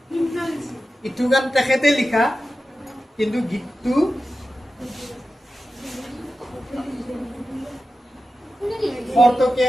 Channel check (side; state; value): both; normal; correlation 0.92